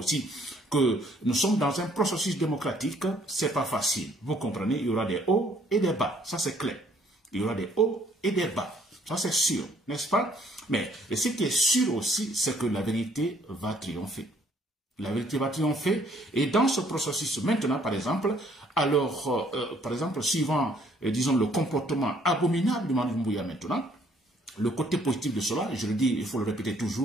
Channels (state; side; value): normal; both; correlation 0.63